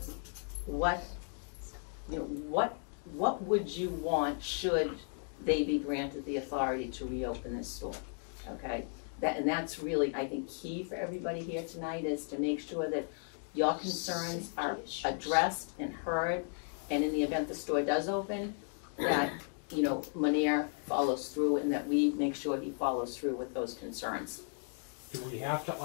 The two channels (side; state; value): right; silent; 54 dB below the other